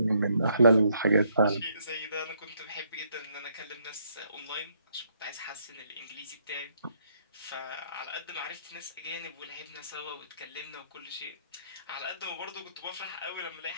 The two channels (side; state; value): both; inverted; correlation -0.69